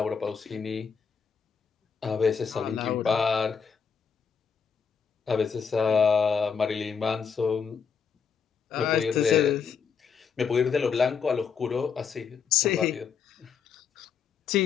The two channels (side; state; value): right; quieter; 6.4 dB